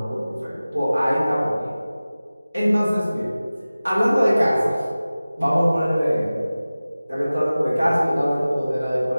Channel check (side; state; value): both; inverted; correlation -0.97